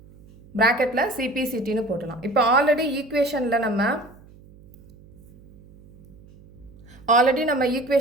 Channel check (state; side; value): noise; right; hum, 24 dB below the sound